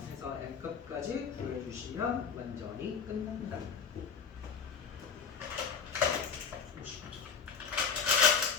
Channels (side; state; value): right; quieter; 6.2 dB